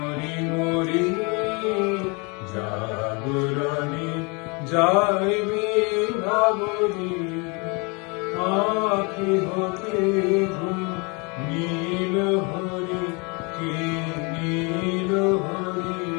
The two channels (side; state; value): right; quieter; 30.8 dB